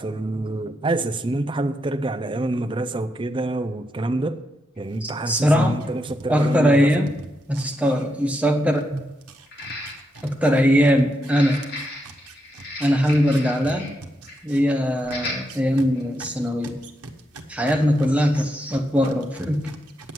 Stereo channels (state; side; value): normal; both; correlation 0.83